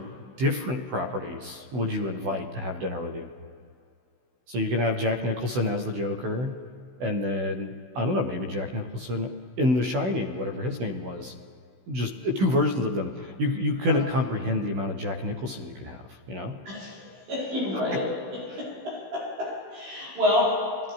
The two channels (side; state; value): left; late; 16 ms